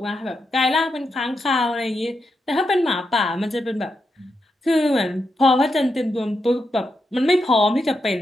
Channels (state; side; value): normal; both; correlation 0.85